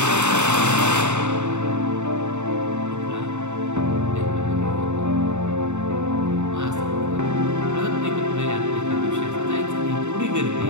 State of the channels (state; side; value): late; left; 0.84 ms